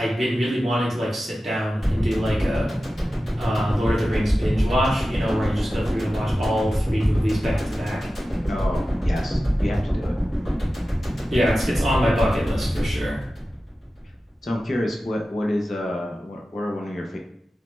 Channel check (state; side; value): normal; both; correlation 0.94